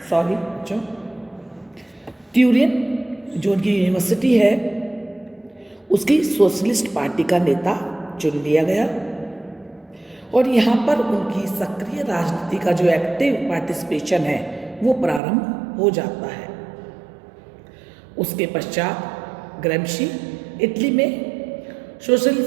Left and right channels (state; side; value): drops out; left; at 15.2 s